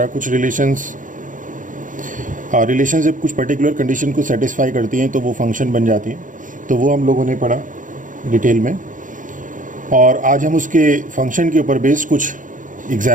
कुछ रिलेशंस जब कुछ पर्टिकुलर कंडीशन को सेटिस्फाई करती हैं तो वो फंक्शन बन जाती हैं, तो वो हम लोगों ने पढ़ा डिटेल में। और आज हम उसके फंक्शन के ऊपर बेस्ड कुछ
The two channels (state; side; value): late; left; 0.38 ms